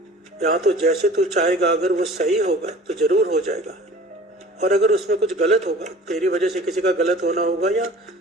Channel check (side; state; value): both; normal; correlation 0.45